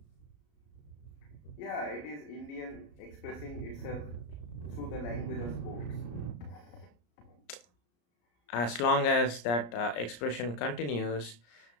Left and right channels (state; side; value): late; right; 34 ms